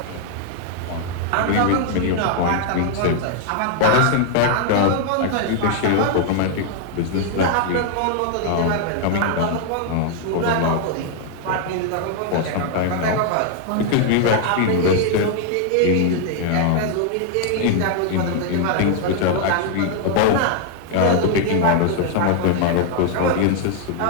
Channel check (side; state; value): both; different; correlation 0.00